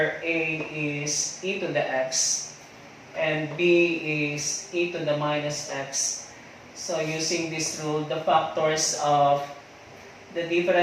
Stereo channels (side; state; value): both; identical; correlation 1.00